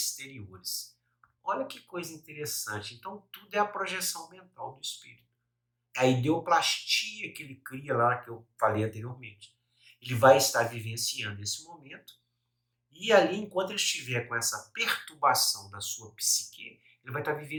Olha que coisa interessante. Então, tudo é a projeção mental do espírito. É a ideoplastia que ele cria lá, que eu falei anteriormente. Ele vai estar vivenciando esse momento e ali, enquanto ele estiver com essa perturbação da sua psique, ele vai estar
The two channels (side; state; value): both; identical; correlation 1.00